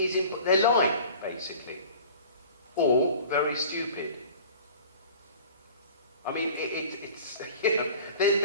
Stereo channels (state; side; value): inverted; both; correlation -0.43